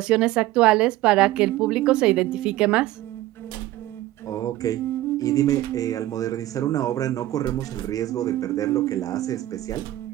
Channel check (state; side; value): quieter; left; 15.6 dB